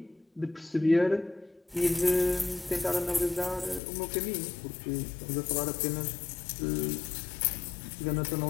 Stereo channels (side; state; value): right; drops out; at 3.8 s